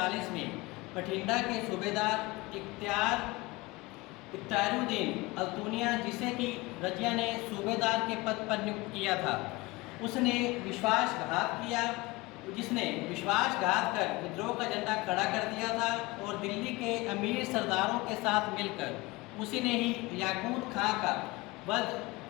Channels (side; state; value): right; quieter; 22.2 dB